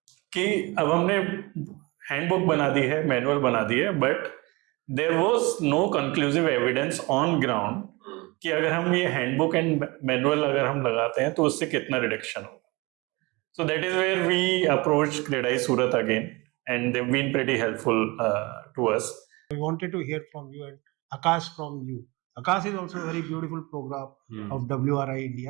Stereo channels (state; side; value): quieter; left; 24.7 dB